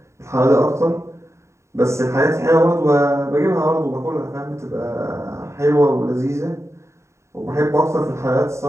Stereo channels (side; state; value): left; late; 0.14 ms